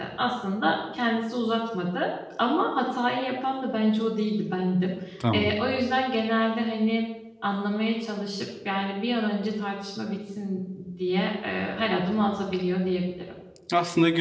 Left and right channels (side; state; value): both; identical; correlation 1.00